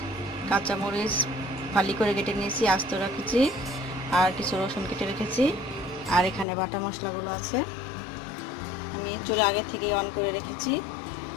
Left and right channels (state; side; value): drops out; right; at 6.5 s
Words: কাঁচামরিচ ফালি করে কেটে নিয়েছি, আস্ত রেখেছি, আর কিছু রসুন কেটে রেখেছি, আর এখানে বাটা মশলাগুলো আছে। আমি চুলা আগে থেকে অন করে রেখেছি।